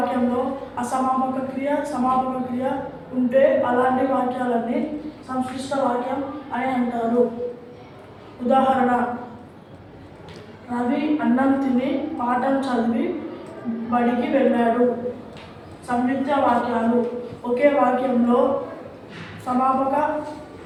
అసమాపక క్రియ, సమాపక క్రియ ఉంటే అలాంటి వాక్యాలన్నీ సంక్షిప్త వాక్యం అని అంటారు. ఉదాహరణ: రవి అన్నం తిని పాఠం చదివి బడికి వెళ్ళాడు. సంయుక్త వాక్యాలు. ఒకే వాక్యంలో సమాపక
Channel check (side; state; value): both; identical; correlation 1.00